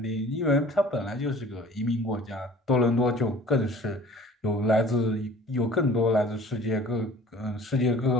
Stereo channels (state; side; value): normal; both; correlation 0.48